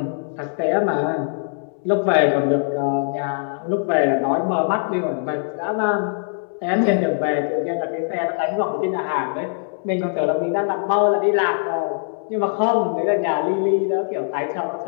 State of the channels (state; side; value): silent; right; digital silence